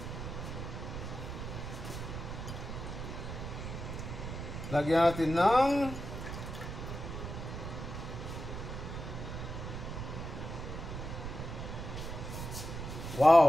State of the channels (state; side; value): noise; right; rumble, 6 dB below the sound